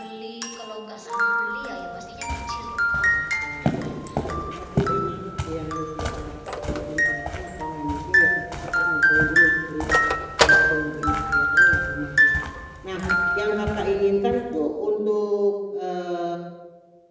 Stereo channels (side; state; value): both; identical; correlation 1.00